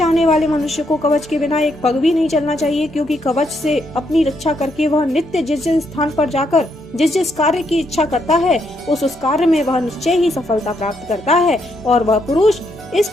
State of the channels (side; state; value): both; normal; correlation 0.76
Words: वाले मनुष्य को कवच के बिना एक पग भी नहीं चलना चाहिए, क्योंकि कवच से अपनी रक्षा करके वह नित्य जिस जिस स्थान पर जाकर जिस कार्य की इच्छा करता है उस कार्य में वह निश्चय ही सफलता प्राप्त करता है और वह पुरुष इस